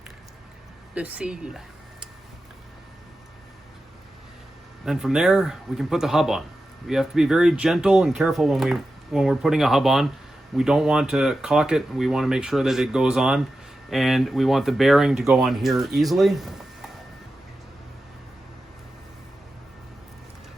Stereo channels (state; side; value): normal; both; correlation 0.92